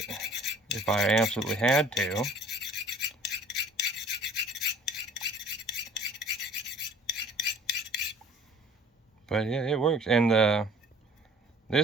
if I absolutely had to. But yeah, it works. And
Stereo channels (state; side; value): normal; both; correlation 0.50